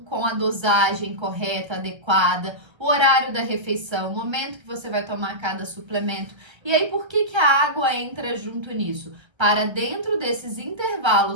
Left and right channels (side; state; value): left; late; 1.3 ms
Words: a dosagem correta, adequada, o horário da refeição, o momento que você vai tomar cada suplemento. E aí, por que a água entra junto nisso? Para dentro desses